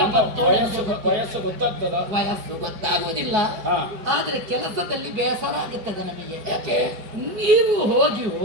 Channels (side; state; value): left; late; 4.8 ms